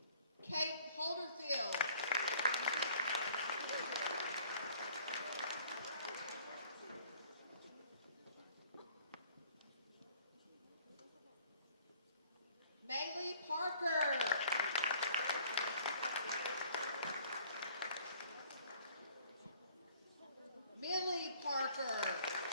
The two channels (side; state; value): both; inverted; correlation -0.56